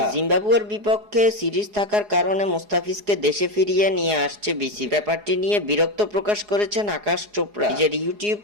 জিম্বাবুয়ের বিপক্ষে সিরিজ থাকার কারণে মোস্তাফিজকে দেশে ফিরিয়ে নিয়ে আসছে বিসিবি। ব্যাপারটি নিয়ে বিরক্ত প্রকাশ করেছেন আকাশ চোপড়া। নিজের ইউটিউব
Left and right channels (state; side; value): late; left; 4.8 ms